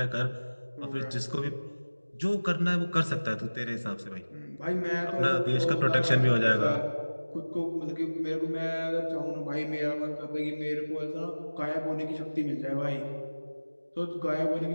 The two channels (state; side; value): inverted; both; correlation -1.00